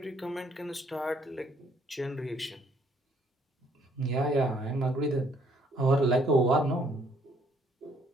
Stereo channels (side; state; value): both; normal; correlation 0.65